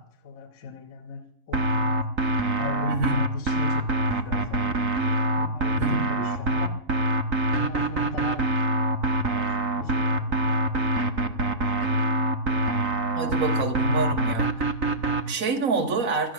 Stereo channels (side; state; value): left; late; 4.1 ms